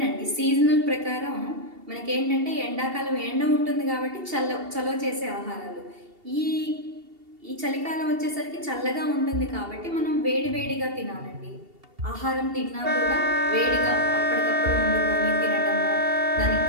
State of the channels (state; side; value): late; left; 2.7 ms